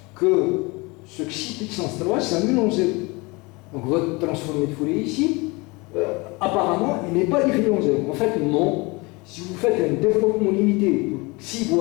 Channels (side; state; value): right; quieter; 25.7 dB